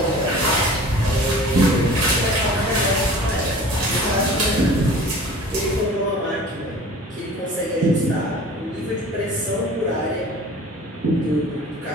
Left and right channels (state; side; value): normal; both; correlation 0.43